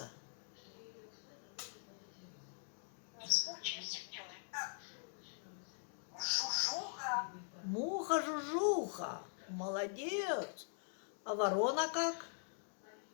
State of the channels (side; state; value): right; silent; digital silence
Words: Не скучайте, делай. Жужуха. Муха-жужуха. Молодец. А ворона как?